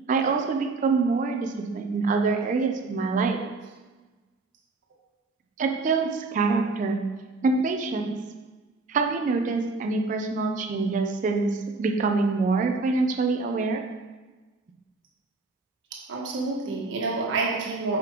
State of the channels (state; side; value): quieter; left; 3.7 dB